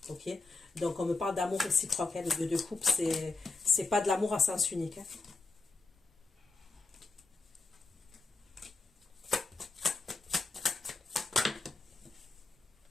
Ok? Donc, on me parle d'amour réciproque. Hein. Le 2 de coupe, c'est pas de l'amour à sens unique. Hein.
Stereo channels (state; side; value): quieter; right; 3.7 dB